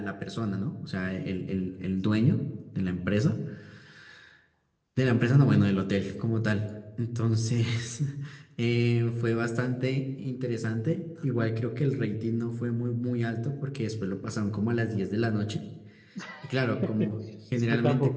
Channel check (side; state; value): both; identical; correlation 1.00